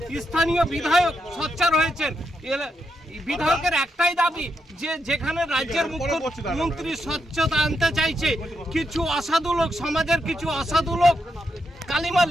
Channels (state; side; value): normal; both; correlation 0.82